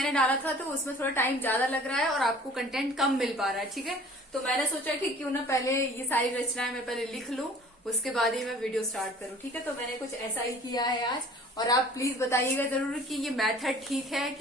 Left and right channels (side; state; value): both; normal; correlation 0.49